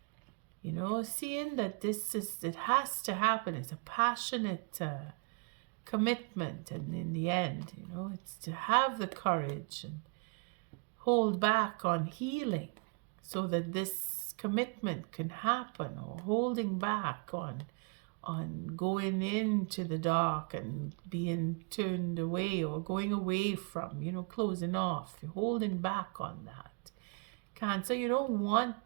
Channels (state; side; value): quieter; left; 36.5 dB